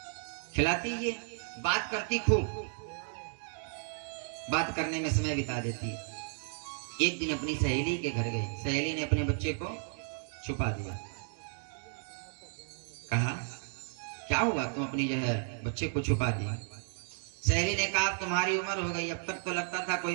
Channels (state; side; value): silent; left; 55 dB below the other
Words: खिलाती, ये बात करती, खूब बात करने में समय बिता देती। एक दिन अपनी सहेली के घर गई, सहेली ने अपने बच्चे को छुपा दिया। कहा क्या हुआ, तुम अपनी जो है बच्चे को छुपा दिया? सहेली ने कहा तुम्हारी उम्र हो गई, अब तक तो लगता था